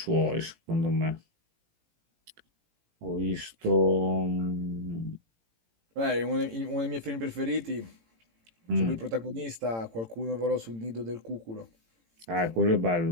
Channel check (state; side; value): late; left; 18 ms